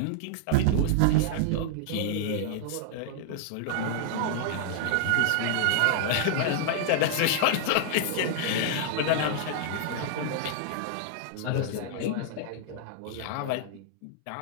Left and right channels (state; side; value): different; both; correlation -0.01